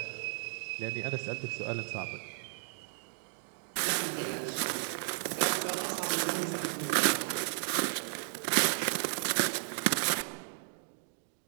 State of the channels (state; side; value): silent; left; digital silence